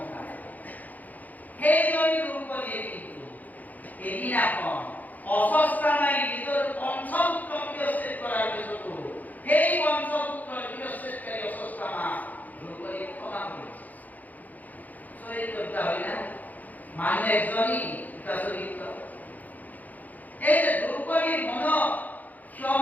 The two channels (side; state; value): right; late; 0.080 ms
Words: সেইজনী দ্ৰৌপদীয়ে কিন্তু এদিনাখন অস্বস্থামাই নিজৰ পঞ্চপুত্ৰ শিৰচ্ছেদ কৰাৰ পিছতো সেই পঞ্চপুত্ৰৰ শিৰচ্ছেদকাৰী অস্বস্থামা দ্ৰৌপদীক ক্ষমা কৰিছে। চৰিত্ৰ দুটা হয় না মানুহ একজনী দুটা চৰিত্ৰ। এই যে দ্ৰৌপদীৰ মনত